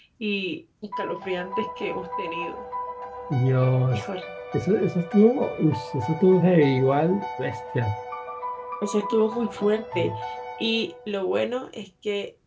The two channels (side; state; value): both; identical; correlation 1.00